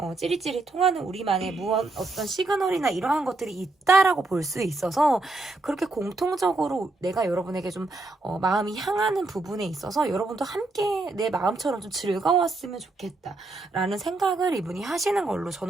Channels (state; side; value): quieter; left; 3.2 dB